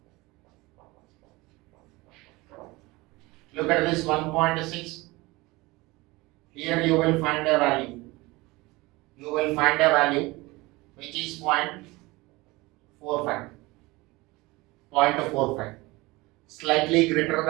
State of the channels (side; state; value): left; quieter; 22.1 dB